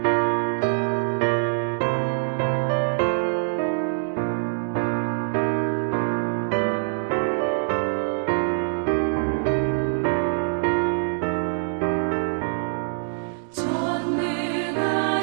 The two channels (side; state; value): left; silent; digital silence